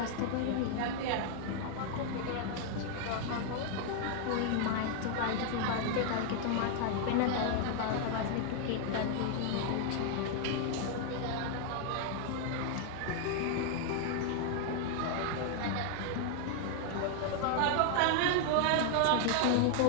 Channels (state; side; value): different; both; correlation 0.00